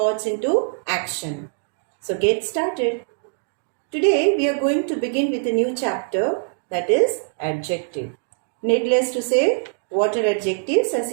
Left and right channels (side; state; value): left; silent; digital silence